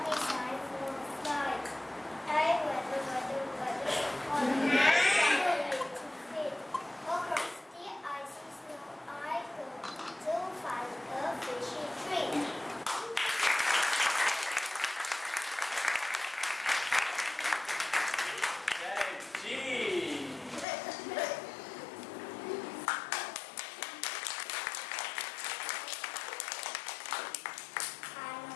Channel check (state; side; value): drops out; right; at 20.7 s